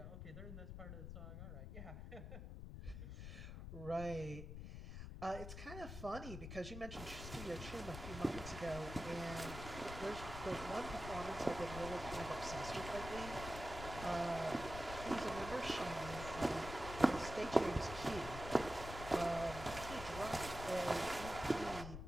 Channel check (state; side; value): noise; left; rumble, 8 dB below the sound